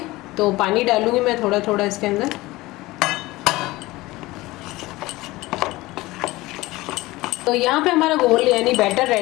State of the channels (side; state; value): right; quieter; 19.6 dB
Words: तो पानी डालूंगी मैं थोड़ा थोड़ा इसके अंदर। तो यहाँ पे हमारा घोल यानी बैटर